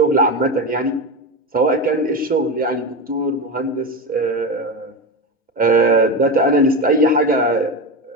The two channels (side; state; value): both; normal; correlation 0.18